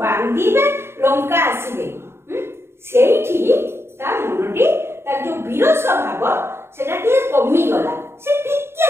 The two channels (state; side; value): late; left; 0.12 ms